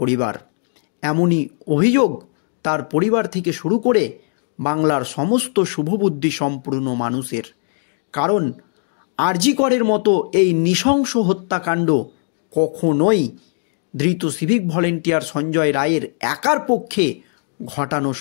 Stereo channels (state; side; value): silent; right; 59 dB below the other